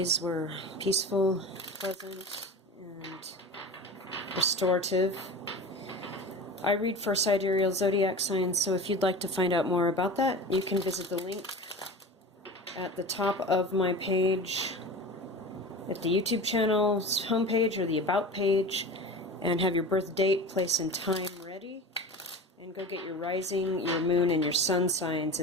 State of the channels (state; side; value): normal; both; correlation 0.32